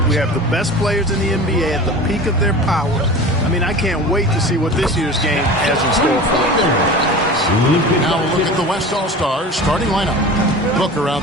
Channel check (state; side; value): normal; both; correlation 0.36